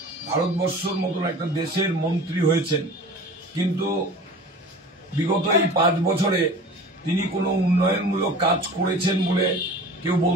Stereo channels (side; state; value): both; normal; correlation 0.39